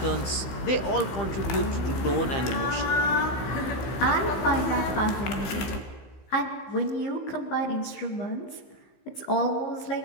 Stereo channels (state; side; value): late; right; 15 ms